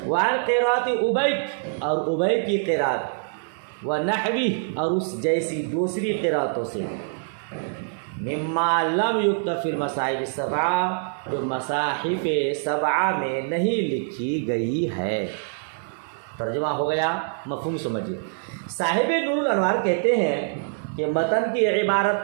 وعن قراءت ابی، اور ابی کی قراءت، ونحوی، اور اس جیسی دوسری قراءتوں سے، مما لم یکتب فی المصاحف السبعہ، جو مصاحف سبعہ میں نہیں لکھی گئی ہے۔ ترجمہ ہو گیا، مفہوم سمجھیے۔ صاحب نور الانوار کہتے ہیں کہ متن کی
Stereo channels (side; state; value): left; silent; digital silence